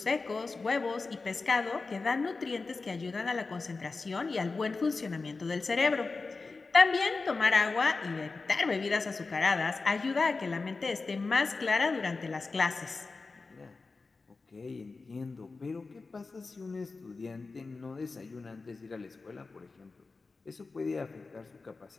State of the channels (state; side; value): quieter; right; 4.0 dB